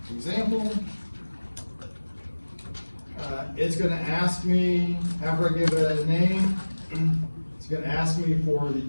example. It's going to ask me, after I give it a name, it's going to ask me for the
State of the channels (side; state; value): both; inverted; correlation -1.00